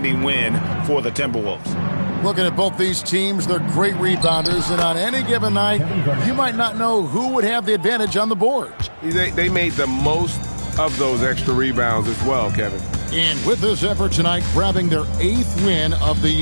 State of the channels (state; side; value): inverted; both; correlation -1.00